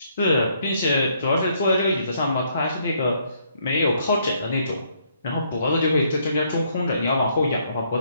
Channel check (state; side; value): inverted; both; correlation -0.70